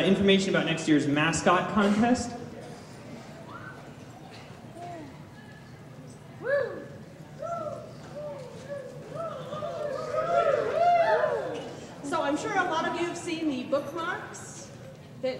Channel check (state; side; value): identical; both; correlation 1.00